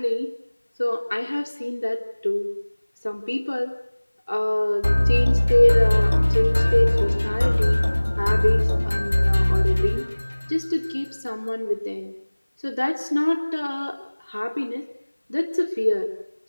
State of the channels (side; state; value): both; inverted; correlation -1.00